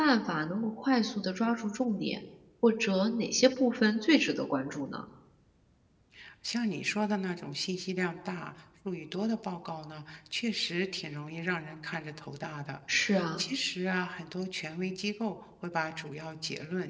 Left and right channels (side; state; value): both; identical; correlation 1.00